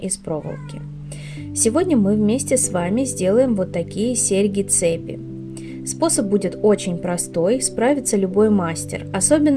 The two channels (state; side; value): identical; both; correlation 1.00